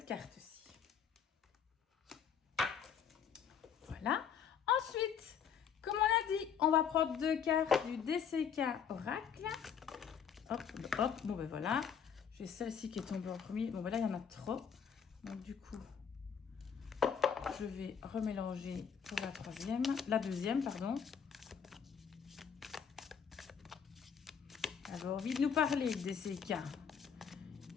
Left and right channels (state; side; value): quieter; right; 7.4 dB